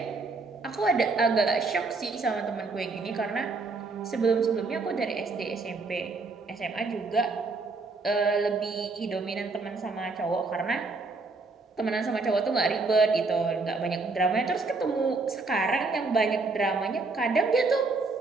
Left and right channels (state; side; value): quieter; left; 3.8 dB